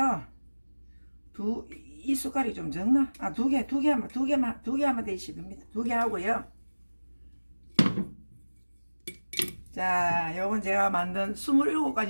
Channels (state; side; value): inverted; both; correlation -1.00